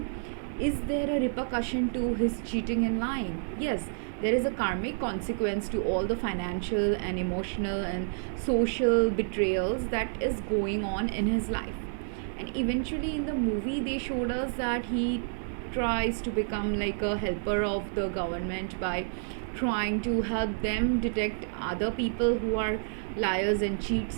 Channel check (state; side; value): silent; left; digital silence